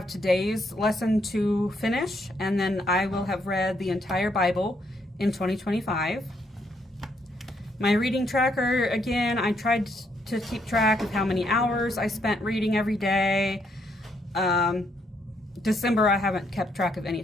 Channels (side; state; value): both; normal; correlation 0.74